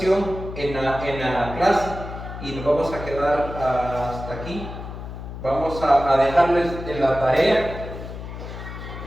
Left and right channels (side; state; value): left; noise; hum, 10 dB below the sound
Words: en la clase y nos vamos a quedar hasta aquí. Vamos a dejarles en la tarea